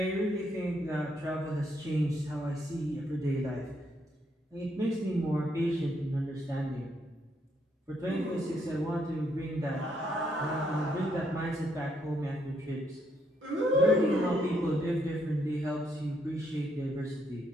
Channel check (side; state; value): both; normal; correlation 0.75